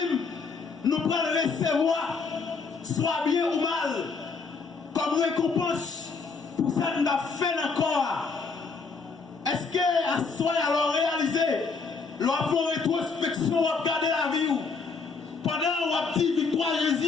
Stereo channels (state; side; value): quieter; right; 4.7 dB